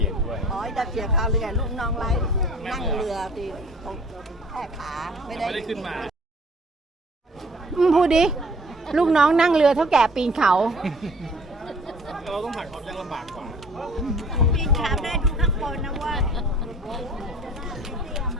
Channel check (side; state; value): both; normal; correlation 0.52